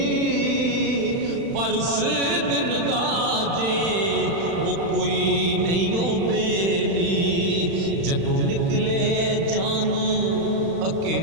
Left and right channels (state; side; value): late; left; 36 ms